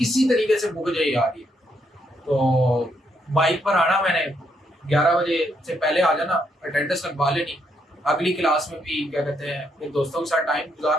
तरीके से मुक जाए यार ये। तो बाइक पर आना, मैंने 11 बजे से पहले आ जाना, अटेंडेंस लगवा लेनी, अगली क्लास में भी क्या कहते हैं अपने दोस्तों के साथ टाइम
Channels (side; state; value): both; normal; correlation 0.76